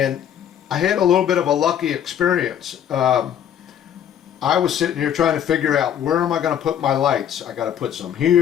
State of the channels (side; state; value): right; quieter; 9.6 dB